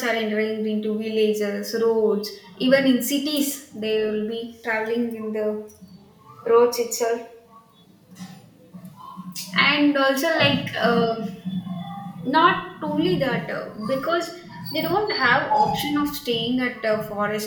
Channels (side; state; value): both; identical; correlation 1.00